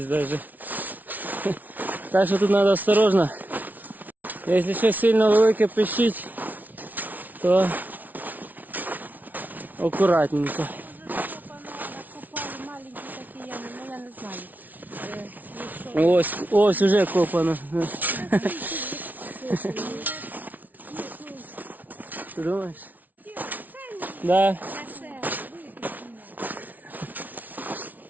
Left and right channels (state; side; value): late; left; 0.079 ms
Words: навіть. Так що тут треба осторожно. Якщо щось сильно велике пищить, то акуратненько. Ось уже копано. Ти думаєш? Да.